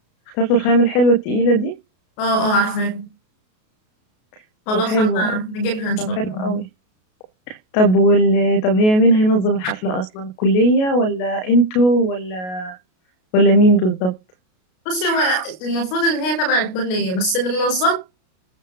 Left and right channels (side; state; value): right; late; 33 ms